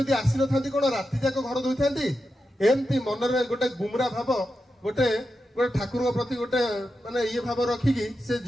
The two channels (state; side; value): normal; both; correlation 0.89